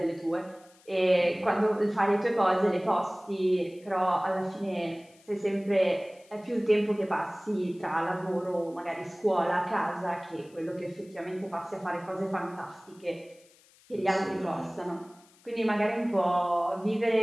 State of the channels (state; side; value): noise; left; hiss, 28 dB below the sound